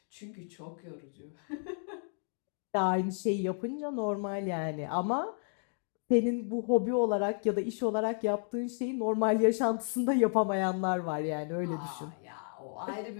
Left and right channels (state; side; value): silent; right; 56 dB below the other